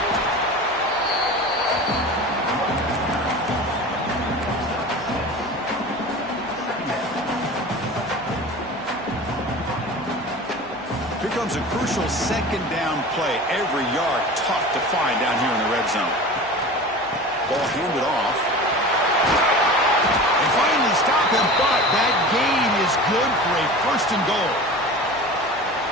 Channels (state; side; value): noise; left; hum, 29 dB below the sound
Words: Comes a crucial 2nd down play. Every yard tough to find down here in the red zone. Ball handed off. They finally stop him, but that gain is good for a 1st and goal.